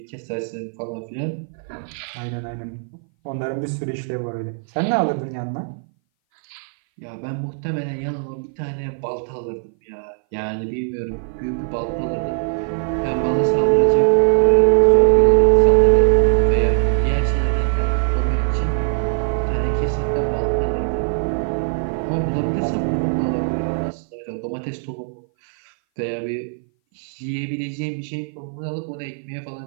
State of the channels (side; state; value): left; silent; 59 dB below the other